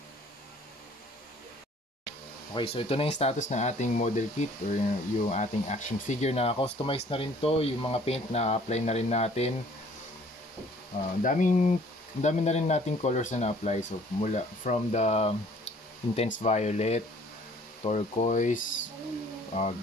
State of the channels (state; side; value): normal; both; correlation 0.55